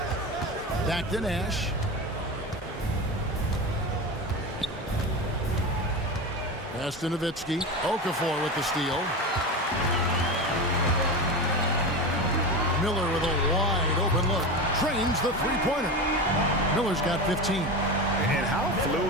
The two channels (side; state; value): both; normal; correlation 0.23